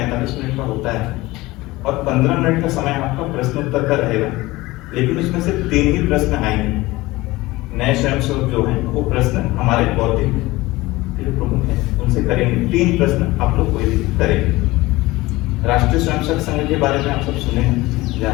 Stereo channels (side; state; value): right; quieter; 19.9 dB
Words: मिनट का होता है और 15 मिनट का समय आपका प्रश्नोत्तर का रहेगा, लेकिन उसमें से 3 ही प्रश्न आएंगे। नए स्वयंसेवक जो हैं वो प्रश्न हमारे बौद्धिक जो प्रमुख हैं उनसे करेंगे। 3 प्रश्न आप लोग कोई भी करेंगे। राष्ट्रीय स्वयंसेवक संघ के बारे में आप सब सुने हैं,